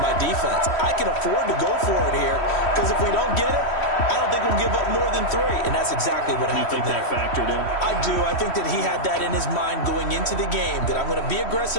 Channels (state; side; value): late; right; 3.1 ms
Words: my defense. I can afford to go for it here, because if we don't get it, I don't think we'll give up more than 3, and that's exactly what happened there. You think that factored in? I do. I think that he had that in his mind going into the game, that I'm going to be